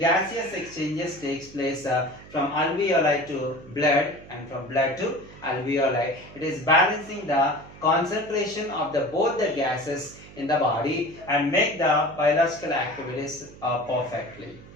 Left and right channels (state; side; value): noise; right; hum, 19 dB below the sound